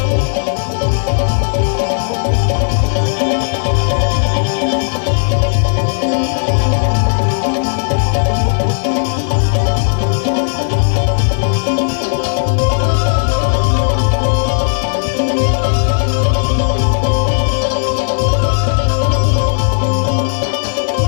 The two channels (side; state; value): right; silent; digital silence